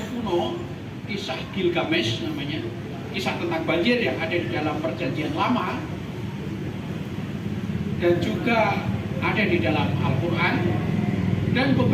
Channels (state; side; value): identical; both; correlation 1.00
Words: kuno, kisah Gilgamesh namanya, kisah tentang banjir yang ada di dalam Perjanjian Lama, dan juga ada di dalam Al-Quran, dan